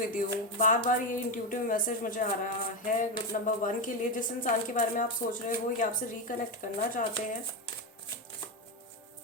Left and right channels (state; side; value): normal; both; correlation 0.12